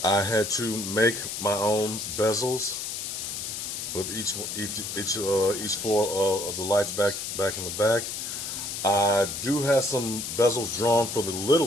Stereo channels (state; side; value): noise; left; hiss, 5 dB below the sound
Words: I had to make my own bezels with each four of the lights back in the back. I do have some bezels drawn for the